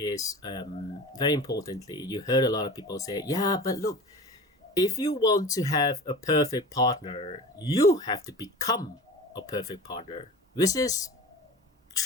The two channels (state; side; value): normal; both; correlation 0.36